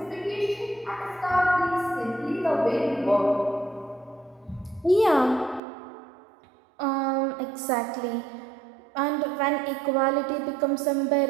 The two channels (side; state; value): left; drops out; at 5.6 s